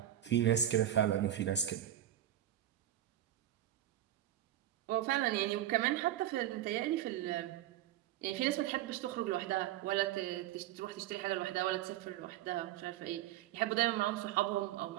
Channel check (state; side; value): quieter; left; 12.4 dB